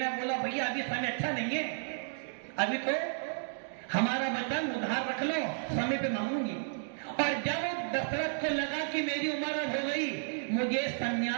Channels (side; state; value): left; silent; digital silence